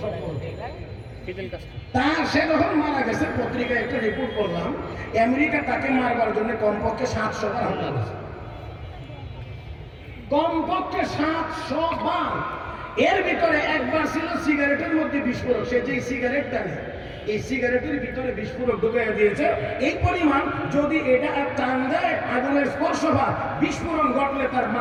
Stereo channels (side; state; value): both; identical; correlation 1.00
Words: তার সে যখন মারা গেছে, পত্রিকায় একটা রিপোর্ট করলাম, আমেরিকা তাকে মারবার জন্য কমপক্ষে 700 বার হামলা করেছে, কমপক্ষে 700 বার। এর ভিতরে একবার ছিল সিগারেটের মধ্যে বিস্ফোরক। সে যে সিগারেট টানে, এই সিগারেটের ভিতরে বিস্ফোরক ঢুকিয়ে দিয়েছে। এই পরিমাণ যদি এটা টান দেয়, আগুনের স্পর্শ বা বিস্ফোরণ ঘটলে তার